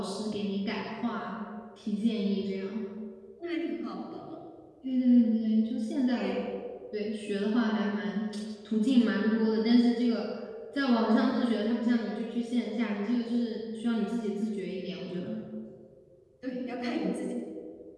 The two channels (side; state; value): both; identical; correlation 1.00